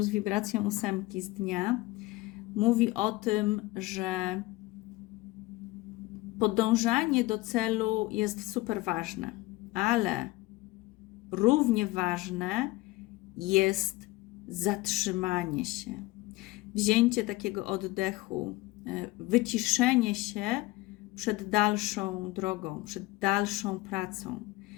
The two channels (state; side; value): quieter; right; 20.2 dB